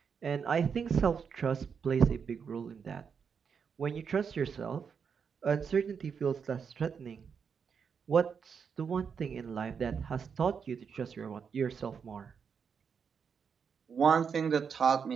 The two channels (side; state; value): left; quieter; 6.5 dB